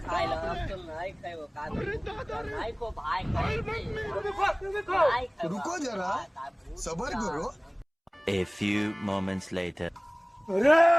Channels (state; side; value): identical; both; correlation 1.00